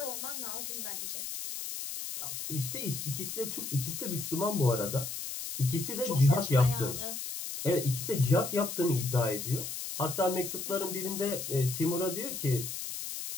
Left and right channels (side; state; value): left; noise; hiss, 6 dB below the sound